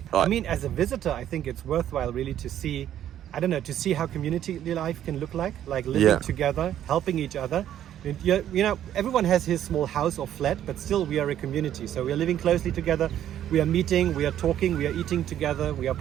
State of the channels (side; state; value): left; quieter; 11.1 dB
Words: Right. I mean, as a visitor, I think it's worthwhile really to see, to see how community life can look like living together, helping each other. You know, everyone has his small house or flat, but still we are a community. So we are living closely together. We are meeting, we are talking, we are eating together, we are